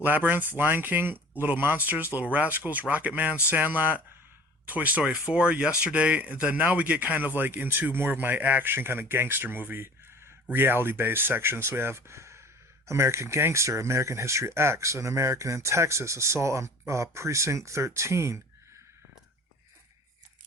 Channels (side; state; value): both; normal; correlation 0.44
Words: Lion King, Little Monsters, Little Rascals, Rocket Man, Sandlot, Toy Story 4, Yesterday. And then now we get kind of like into more of my action kind of gangster movie, reality-based section. So we have American Gangster, American History X, An American in Texas, Assault on Precinct 13.